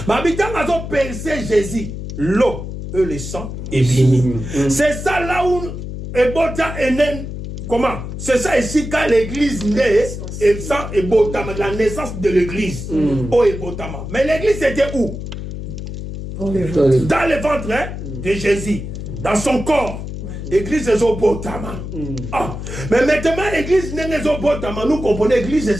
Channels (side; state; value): left; noise; hum, 8 dB below the sound